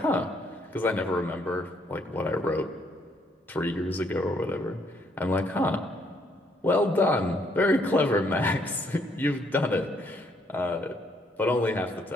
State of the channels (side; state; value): both; normal; correlation 0.70